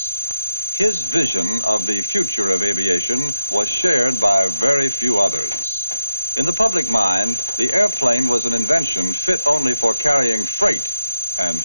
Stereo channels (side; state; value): both; inverted; correlation -0.88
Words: His vision of the future of aviation was shared by very few others. In the public mind, the airplane was an invention fit only for carrying freight and